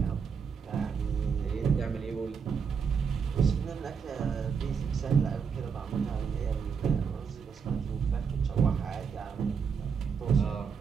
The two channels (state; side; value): quieter; left; 6.3 dB